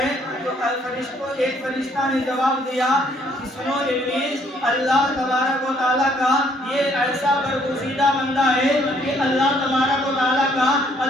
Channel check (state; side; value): normal; both; correlation 0.65